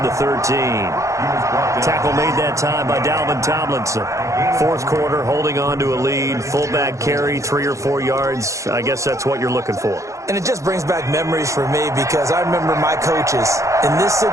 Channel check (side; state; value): left; late; 0.15 ms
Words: the 13. Tackle made that time by Dalvin Tomlinson. Fourth quarter, holding on to a lead. Fullback carry, 3 or 4 yards. I guess that's what you're looking for. And it just brings back memories for me because I remember my coaches in this